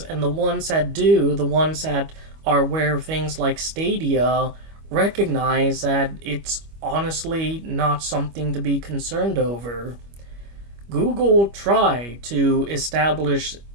and the ones that do, the ones that are aware of things like Stadia, recognize that it's honestly not something to be concerned over. Google tried to establish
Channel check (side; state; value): left; late; 25 ms